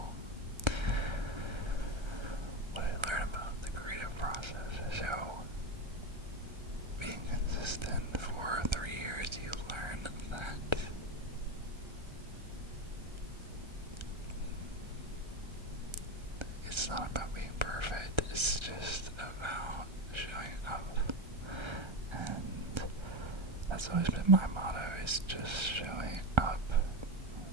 What I learned about the creative process. So being consistent for 3 years, you learn that it's not about being perfect, it's just about showing up. And that's always been my motto, is just showing up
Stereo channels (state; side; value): late; left; 1.3 ms